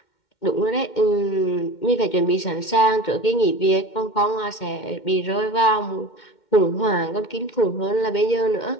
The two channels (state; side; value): late; right; 2.1 ms